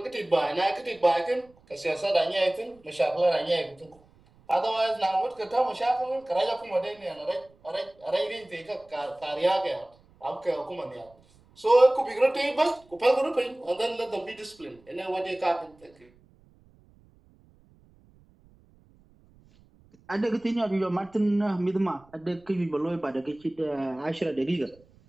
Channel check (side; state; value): right; noise; rumble, 29 dB below the sound